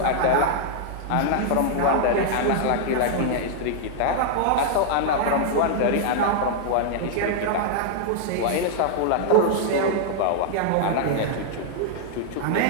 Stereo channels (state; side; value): different; both; correlation -0.01